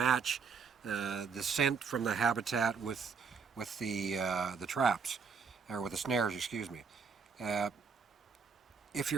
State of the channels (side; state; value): left; quieter; 5.6 dB